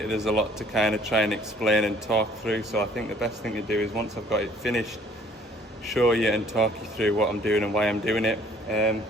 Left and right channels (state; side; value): normal; both; correlation 0.57